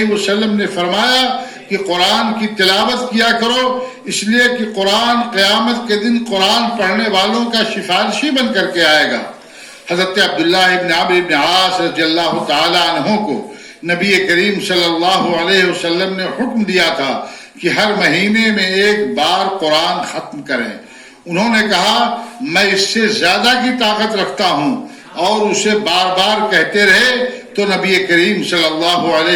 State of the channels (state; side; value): identical; both; correlation 1.00